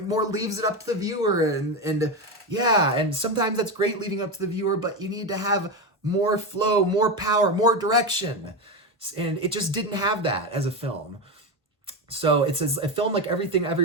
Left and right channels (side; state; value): both; normal; correlation 0.15